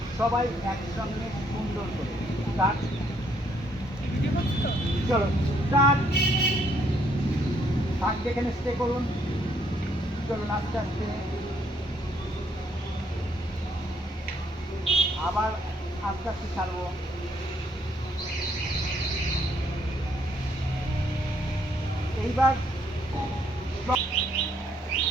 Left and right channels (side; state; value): both; normal; correlation 0.70